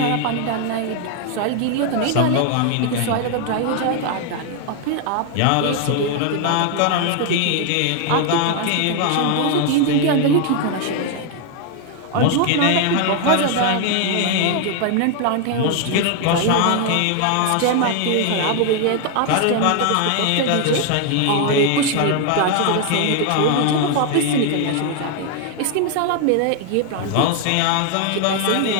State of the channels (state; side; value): different; both; correlation 0.00